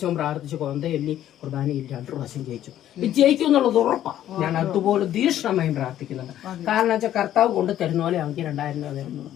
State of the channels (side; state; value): right; quieter; 11.9 dB